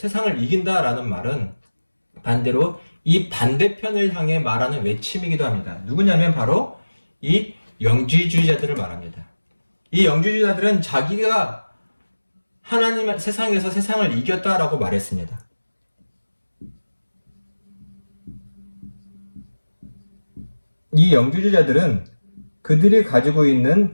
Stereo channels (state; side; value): inverted; both; correlation -1.00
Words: 이긴다라는 말은 반대로 이 반대편을 향해 말하는 외침이기도 합니다. 누구냐면 바로 이 영지주의자들을 말합니다. 이 영지주의자들은 자기가 하나님 세상에서 세상을 이겼다라고 말했습니다. 이 영지주의자들은 그들이 가지고 있는